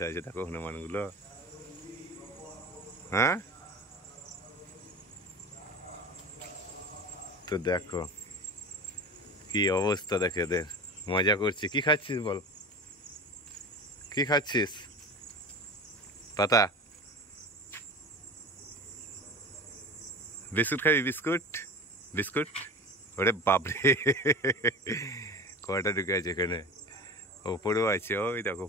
আছে দেখো হনুমানগুলো। হ্যাঁ তো দেখো কি অবস্থা দেখে এদের, মজা করছি। কি খাচ্ছিস বল, কি খাচ্ছিস? পাতা বিস্কুট খাবি? বিস্কুট বিস্কুট ওরে বাপরে কয়টা ঢুকে আছে এখানে, ওপরেও আছে, ওই দেখো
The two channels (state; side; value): normal; both; correlation 0.33